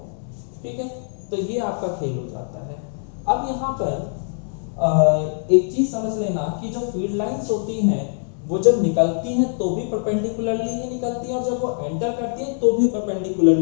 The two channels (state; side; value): silent; right; digital silence